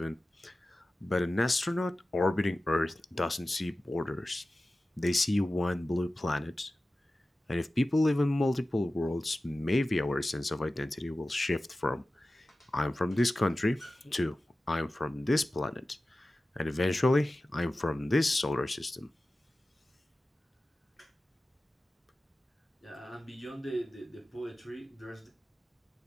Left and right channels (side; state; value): both; normal; correlation 0.95